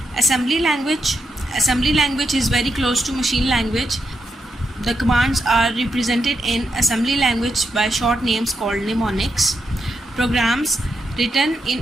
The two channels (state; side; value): normal; both; correlation 0.83